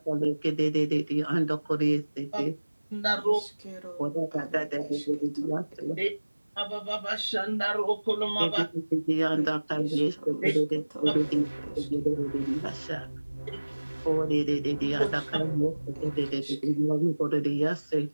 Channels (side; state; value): both; inverted; correlation -1.00